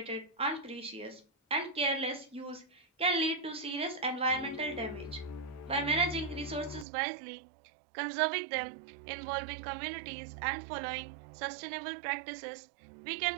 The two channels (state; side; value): drops out; left; at 6.9 s